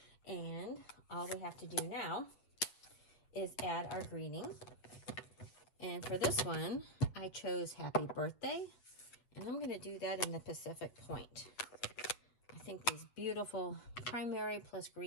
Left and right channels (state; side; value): late; right; 8.3 ms